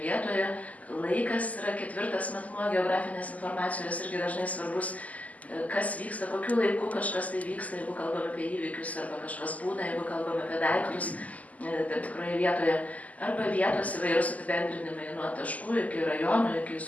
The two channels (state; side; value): late; right; 0.074 ms